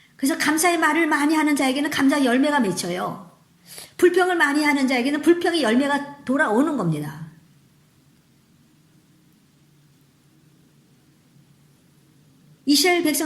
그래서 감사의 말을 많이 하는 자에게는 감사의 열매가 맺혀요. 불평을 많이 하는 자에게는 불평의 열매가 돌아오는 겁니다. 이스라엘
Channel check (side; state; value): both; identical; correlation 1.00